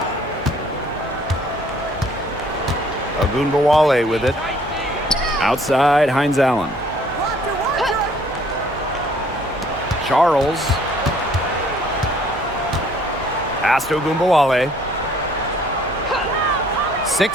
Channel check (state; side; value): normal; both; correlation 0.59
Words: Ogunbowale with it. Outside, Hines Allen. Charles. Pass to Ogunbowale.